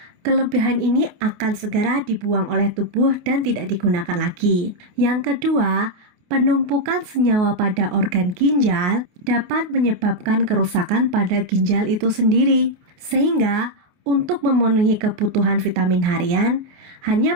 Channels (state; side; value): late; left; 28 ms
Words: kelebihan ini akan segera dibuang oleh tubuh dan tidak digunakan lagi. Yang kedua, penumpukan senyawa pada organ ginjal dapat menyebabkan kerusakan pada ginjal itu sendiri, sehingga Untuk memenuhi kebutuhan vitamin harian,